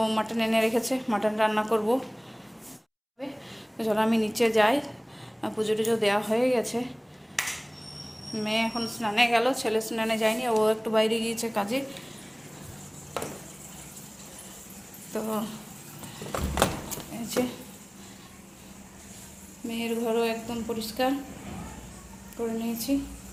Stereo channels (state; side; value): identical; both; correlation 1.00